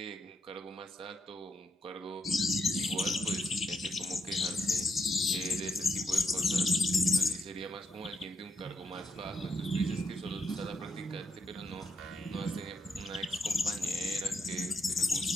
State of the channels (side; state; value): both; normal; correlation 0.78